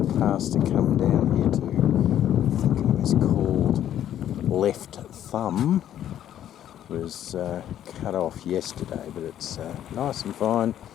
pass to come down here to, I think it was called Left Thumb, was cut off yesterday, but it's nice and fine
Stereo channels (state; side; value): quieter; right; 11.1 dB